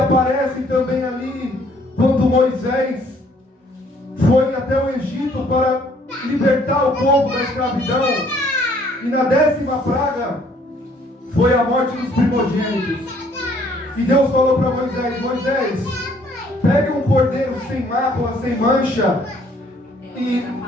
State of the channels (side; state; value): both; normal; correlation 0.62